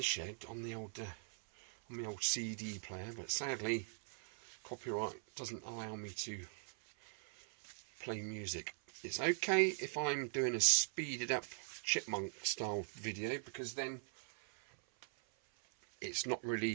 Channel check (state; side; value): silent; left; 50 dB below the other